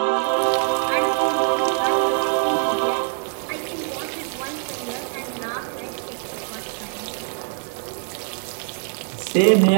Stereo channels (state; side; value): silent; left; 60 dB below the other